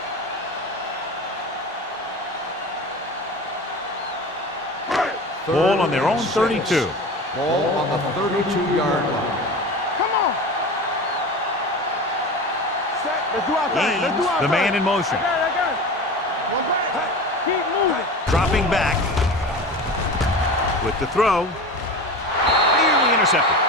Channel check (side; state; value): both; normal; correlation 0.31